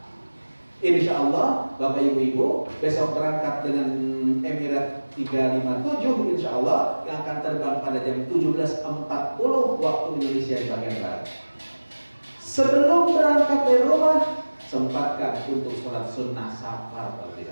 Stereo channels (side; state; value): both; inverted; correlation -1.00